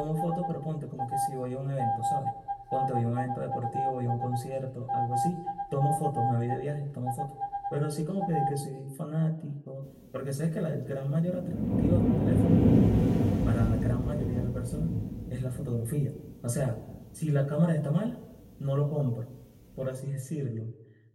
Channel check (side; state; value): both; identical; correlation 1.00